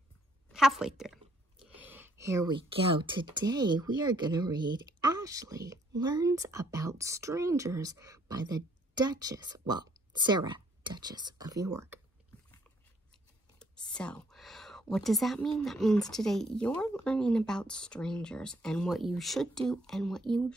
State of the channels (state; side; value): normal; both; correlation 0.67